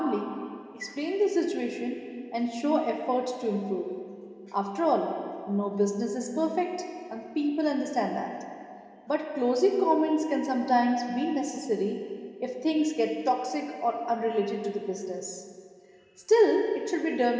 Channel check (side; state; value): both; identical; correlation 1.00